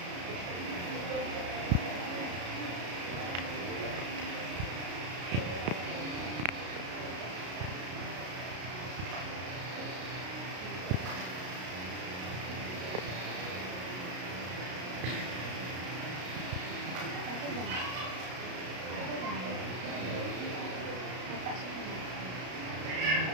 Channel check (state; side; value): late; left; 33 ms